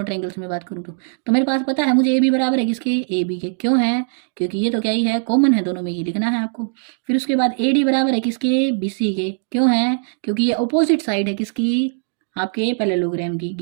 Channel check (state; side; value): silent; left; 66 dB below the other